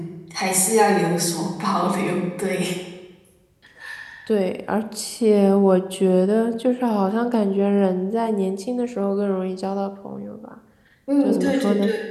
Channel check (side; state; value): both; identical; correlation 1.00